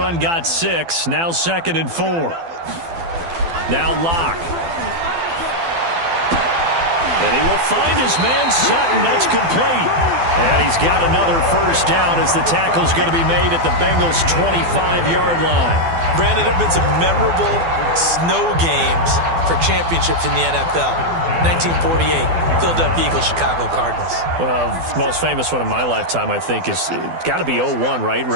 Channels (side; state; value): left; late; 12 ms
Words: got 6. Now 2nd and 4. Now Locke. And he will find his man Sutton. That's complete. And he's got another first down as the tackle's going to be made at the Bengals' 25-yard line. Brandon, there have been some memorable snow games for championships in the NFL. 1948, Philadelphia Eagles, Chicago Cardinals. Well, the most famous one in my lifetime, I think, is got to be 01, right?